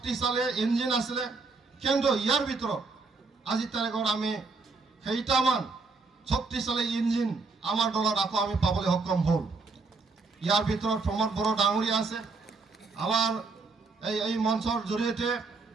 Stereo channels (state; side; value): quieter; left; 4.1 dB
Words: ইঞ্জিন আছিলে, কিন্তু ইয়াৰ ভিতৰত আজিৰ তাৰিখত আমি কেইটামান শক্তিশালী ইঞ্জিন আমাৰ দলত আকৌ আমি পাবলৈ সক্ষম হ'ল। ইয়াৰ ভিতৰত প্ৰমোদ বড়ো ডাঙৰীয়া আছে। আমাৰ এই মঞ্চৰ জৰিয়তে